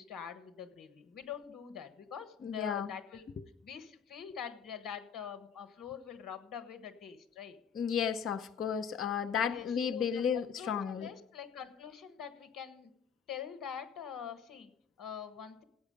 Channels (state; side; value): quieter; right; 7.4 dB